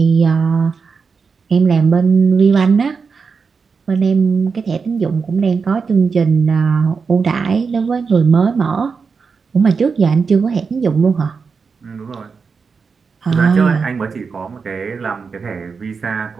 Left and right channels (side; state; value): left; quieter; 5.3 dB